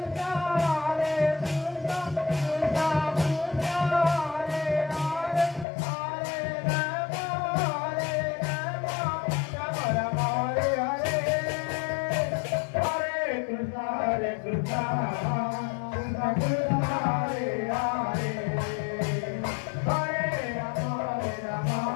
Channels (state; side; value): drops out; right; at 5.7 s